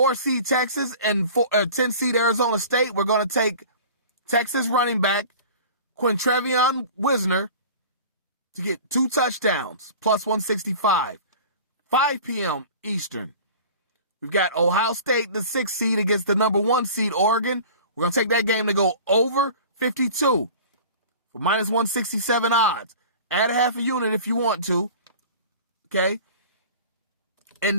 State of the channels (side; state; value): both; inverted; correlation -0.41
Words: Texas and 10-seed Arizona State. We're going to take Texas running back Quintrevion Wisner to get 2 touchdowns, +165. 5 p.m. Eastern. We've got Ohio State, the 6th seed, against the number 1 seed, Oregon. We're going to take that game to go over 52 for -167 odds. Add a half a unit if you want to. Okay. And